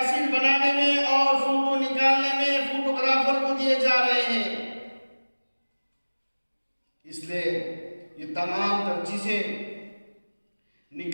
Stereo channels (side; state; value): both; inverted; correlation -1.00